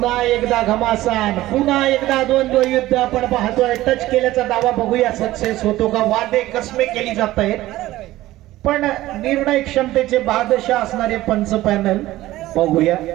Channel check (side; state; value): left; quieter; 16.2 dB